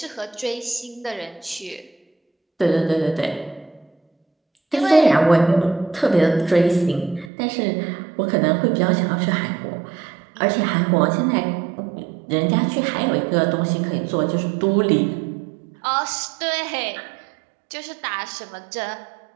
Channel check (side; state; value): left; drops out; at 7.3 s